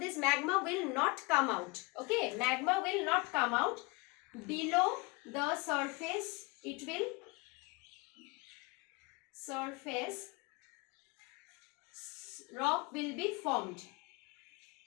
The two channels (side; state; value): right; quieter; 26.4 dB